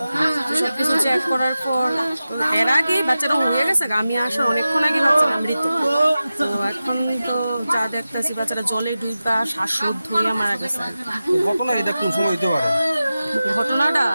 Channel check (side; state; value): both; inverted; correlation -0.94